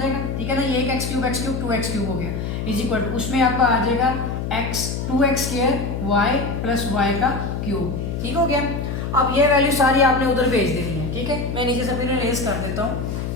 ठीक है ना, ये एक एक्स क्यूब 2x क्यूब हो गया इज इक्वल टू, उसमें आपका आ जाएगा x 2x square y plus y का क्यूब, ठीक हो गया। अब ये वैल्यू सारी आपने उधर भेज देनी है, ठीक है। मैं नीचे से फिर रेस कर देता हूँ।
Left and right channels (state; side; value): noise; left; hum, 4 dB below the sound